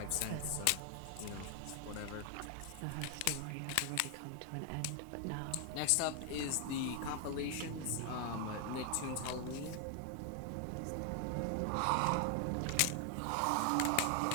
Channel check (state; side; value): different; both; correlation 0.00